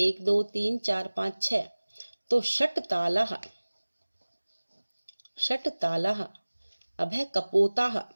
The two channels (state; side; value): inverted; both; correlation -1.00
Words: 2 3 4 5 6। तो षट तालः, षट तालः। अब है कपोताः,